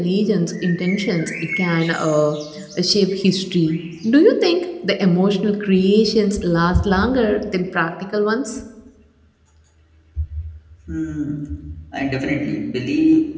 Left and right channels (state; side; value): identical; both; correlation 1.00